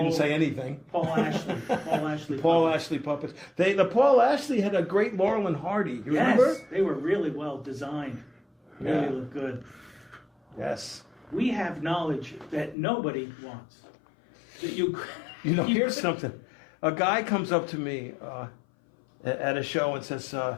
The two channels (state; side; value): drops out; right; at 12.8 s